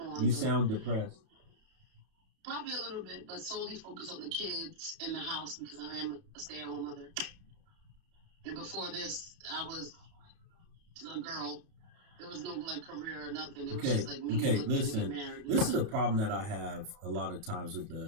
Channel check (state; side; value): late; left; 31 ms